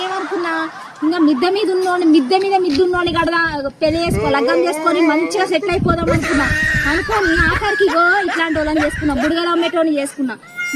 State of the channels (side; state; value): both; identical; correlation 1.00